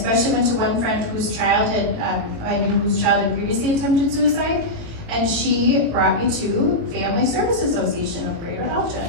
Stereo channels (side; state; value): left; late; 18 ms